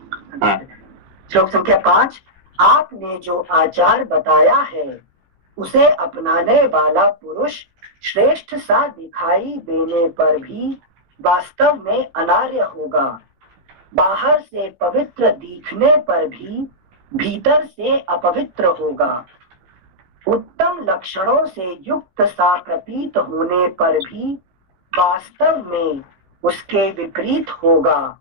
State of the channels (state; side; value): late; left; 16 ms